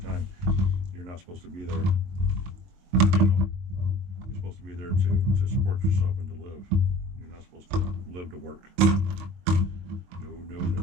you're not supposed to be there, you know, you're supposed to be there to support yourself and to live. You're not supposed to live to work. No, no,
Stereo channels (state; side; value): late; left; 22 ms